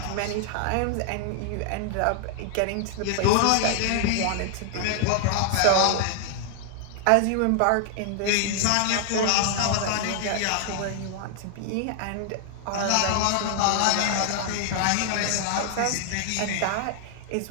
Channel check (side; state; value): both; different; correlation 0.00